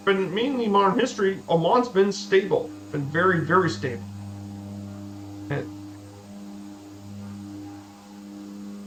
mainly modern history, Oman's been stable, been very, very stable. And,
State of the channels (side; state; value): both; identical; correlation 1.00